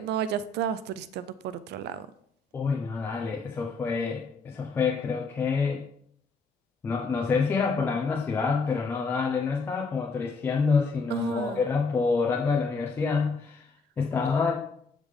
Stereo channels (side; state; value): right; quieter; 3.7 dB